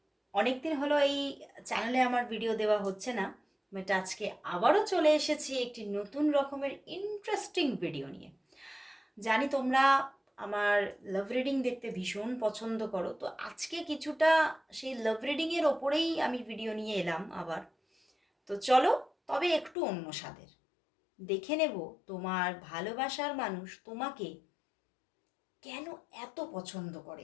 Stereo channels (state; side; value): drops out; right; at 19.8 s